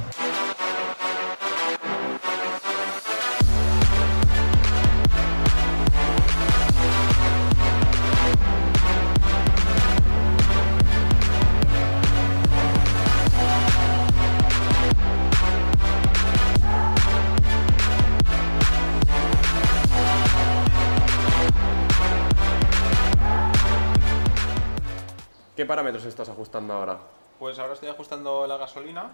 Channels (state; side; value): inverted; both; correlation -1.00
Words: ¿Qué parámetros estás ajustando ahora? Pues ahora estoy ajustando la